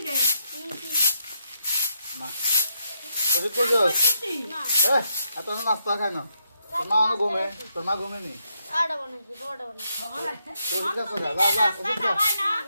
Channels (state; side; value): inverted; both; correlation -0.78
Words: Ma. ওষুধ কইছস? এই এত নাস্তা খায় না। তোর মা ঘুমে, তোর মা ঘুমে নি। আড়া বানাইছি, বড় বানাইছি। ওষুধ আছে যা, যা, যা, ওষুধ খা।